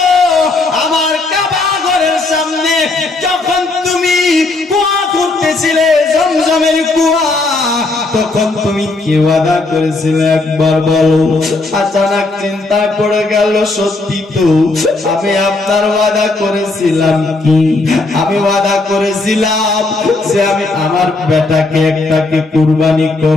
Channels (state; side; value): quieter; right; 3.3 dB